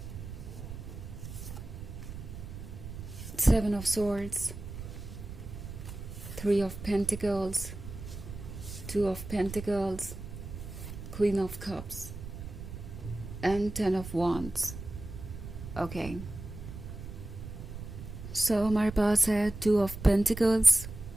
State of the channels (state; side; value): noise; right; rumble, 10 dB below the sound